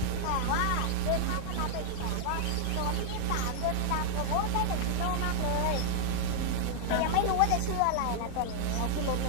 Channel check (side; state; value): both; different; correlation 0.00